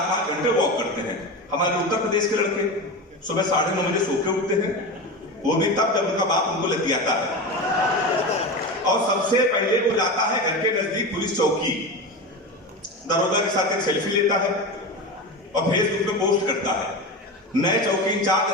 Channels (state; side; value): normal; both; correlation 0.23